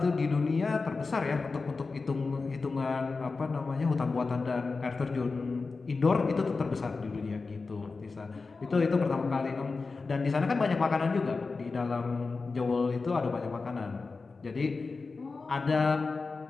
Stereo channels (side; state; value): right; quieter; 4.2 dB